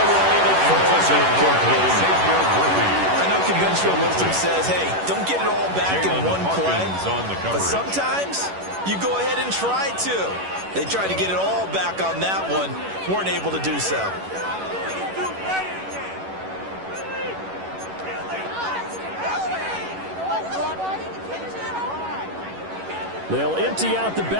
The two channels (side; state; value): left; late; 11 ms